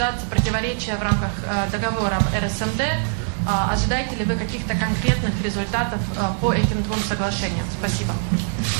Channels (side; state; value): left; silent; digital silence